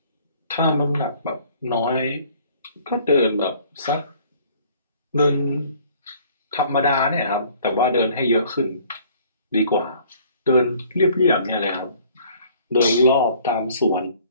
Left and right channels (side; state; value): both; inverted; correlation -0.56